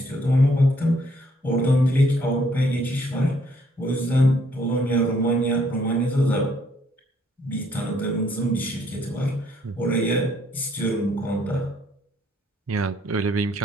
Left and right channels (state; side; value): normal; both; correlation 0.66